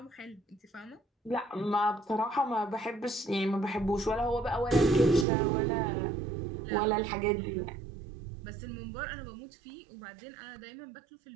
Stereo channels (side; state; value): left; drops out; at 5.2 s